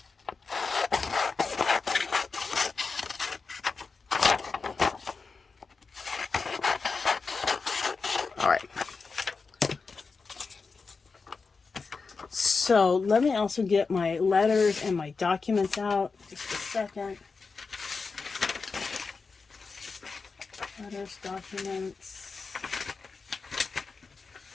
All right. So let me also get my letters and my documents out. Just a second. Letters, documents.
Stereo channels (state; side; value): quieter; right; 4.6 dB